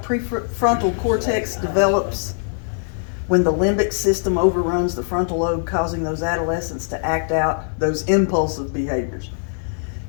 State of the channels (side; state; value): right; silent; digital silence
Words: cortex develops, when the limbic system overruns the frontal lobe, causing those adolescents to act out those impulsive behaviors.